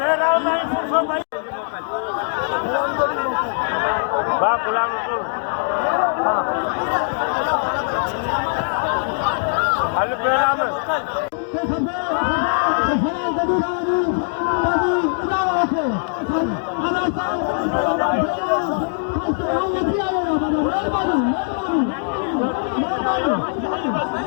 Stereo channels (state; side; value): silent; right; digital silence